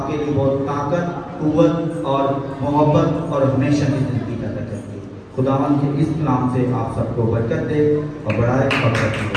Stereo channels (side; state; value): both; identical; correlation 1.00